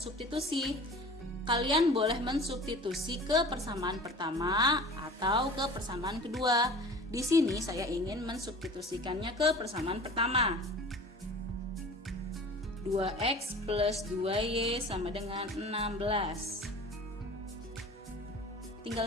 Kalian boleh mensubstitusi ke persamaan pertama atau ke persamaan kedua. Di sini saya ingin mensubstitusikannya ke persamaan pertama. 2x plus 2y sama dengan 16.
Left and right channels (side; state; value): both; normal; correlation 0.41